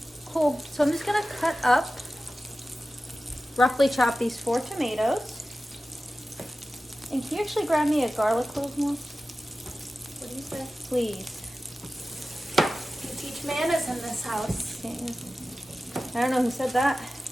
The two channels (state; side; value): normal; both; correlation 0.95